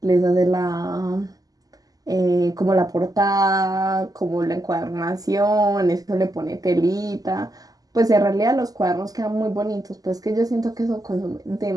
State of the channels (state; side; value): late; left; 0.17 ms